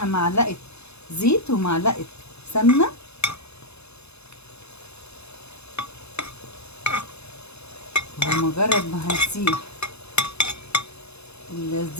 معلقة زيت ومعلقة سمنة، ومجرد ما هنسيح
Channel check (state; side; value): late; right; 0.80 ms